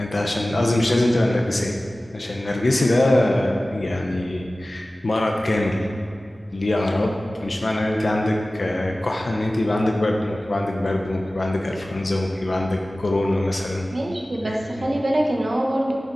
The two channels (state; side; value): normal; both; correlation 0.97